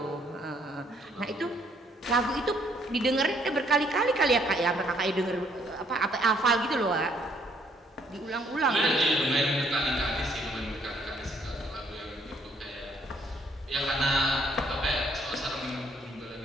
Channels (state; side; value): normal; both; correlation 0.67